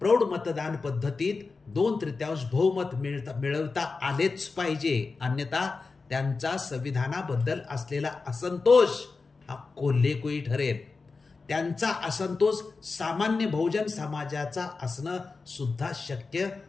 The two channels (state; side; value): quieter; right; 4.2 dB